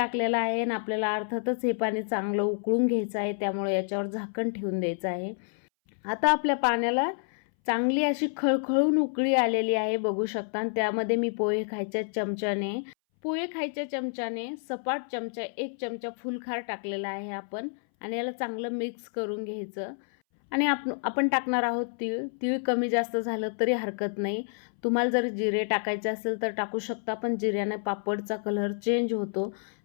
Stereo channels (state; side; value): silent; right; 59 dB below the other